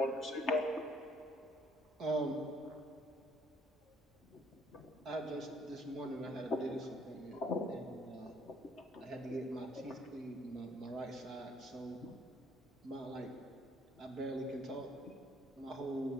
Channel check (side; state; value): both; normal; correlation 0.63